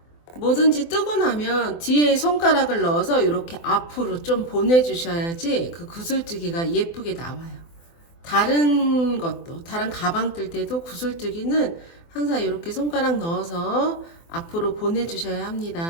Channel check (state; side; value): late; right; 24 ms